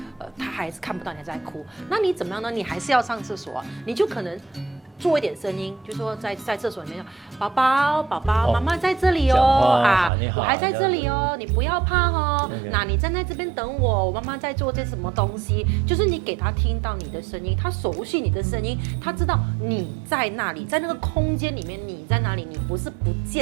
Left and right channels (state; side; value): drops out; left; at 10.1 s